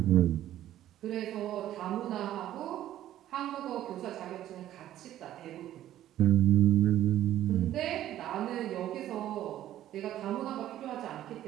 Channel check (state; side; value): quieter; left; 12.7 dB